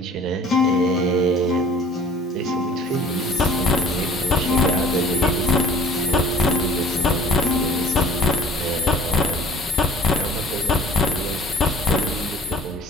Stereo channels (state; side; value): normal; both; correlation 0.50